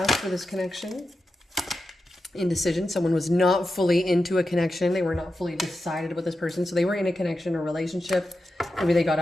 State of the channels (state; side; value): normal; both; correlation 0.90